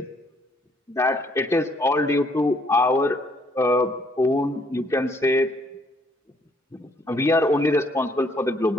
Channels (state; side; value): normal; both; correlation 0.66